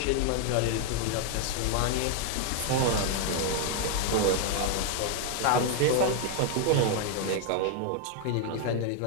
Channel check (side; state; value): both; different; correlation 0.00